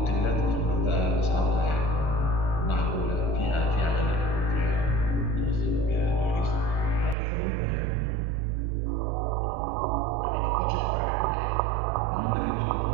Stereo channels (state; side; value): drops out; left; at 7.2 s